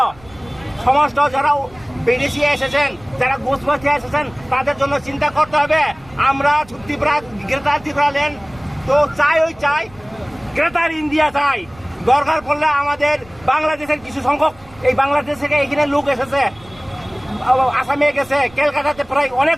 সমস্ত যারা বিদেশি এসেছেন, যারা ঘুষবাসী এসেছেন, তাদের জন্য চিন্তা করতে হবে। আমরা ত্রিপুরা গ্রেটার ট্রিব্যুনাল তো চাই গ্রেটার ইন্ডিয়া চাই। দরকার পড়লে আমাদের বাংলাদেশের কিছু সংখ্যক এই বাংলাদেশ থেকে এখানে লোক এসেছে, আসামে গেছে, কলকাতাতে প্রায় অনেক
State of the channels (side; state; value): right; noise; rumble, 24 dB below the sound